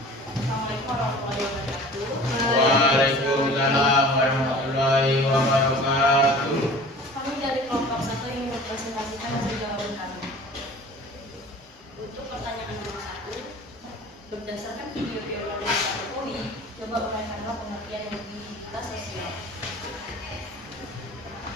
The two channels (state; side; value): normal; both; correlation 0.43